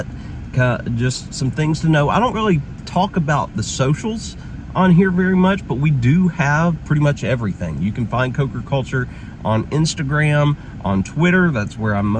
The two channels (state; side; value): identical; both; correlation 1.00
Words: just some things to know. I don't really talk about the socials on here very much, but we do have pretty much everything. You can find CokerCulture on Instagram, on Twitter. That's where I'm